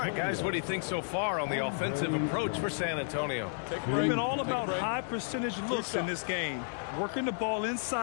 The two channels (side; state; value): right; silent; digital silence